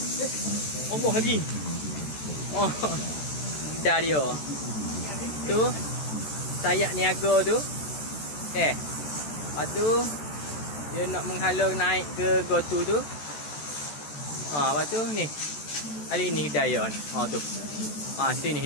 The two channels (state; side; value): late; right; 14 ms